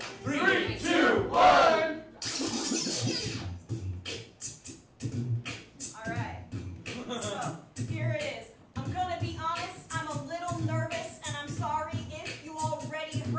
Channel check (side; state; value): both; identical; correlation 1.00